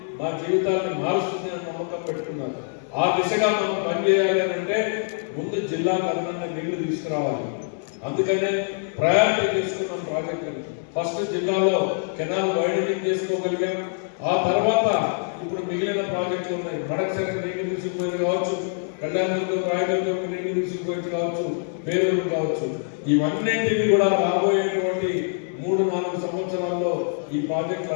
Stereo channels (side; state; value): right; silent; digital silence